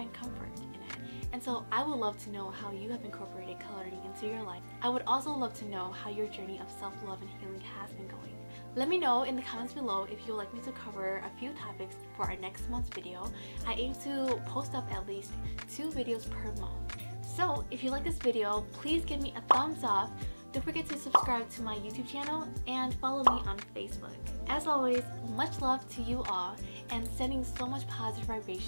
comfort in it. And so I would love to know how you have incorporated coloring into your life. I would also love to know how your journey of self-love and healing has been going. Let me know in the comments below if you'd like me to cover a few topics for our next month's video. I aim to post up at least 2 videos per month. So if you like this video, please give me a thumbs up. Don't forget to subscribe to my YouTube channel and follow me on Facebook. As always, much love to you all and sending so much positive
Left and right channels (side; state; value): both; inverted; correlation -1.00